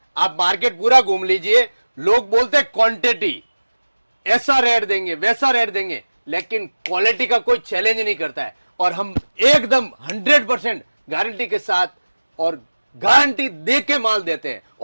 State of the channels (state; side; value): inverted; both; correlation -1.00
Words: आप मार्केट पूरा घूम लीजिए, लोग बोलते हैं क्वांटिटी, ऐसा रेट देंगे वैसा रेट देंगे, लेकिन क्वालिटी का कोई चैलेंज नहीं करता है। और हम एकदम 100% गारंटी के साथ और गारंटी दे के माल देते हैं